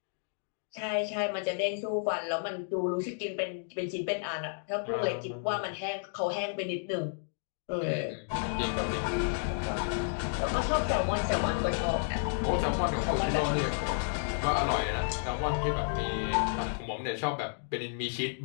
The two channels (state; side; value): silent; right; digital silence